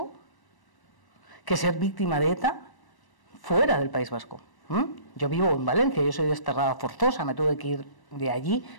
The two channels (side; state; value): right; late; 1.1 ms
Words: que ser víctima de ETA fuera del País Vasco. Yo vivo en Valencia, yo soy desterrada forzosa, me tuve que ir de allí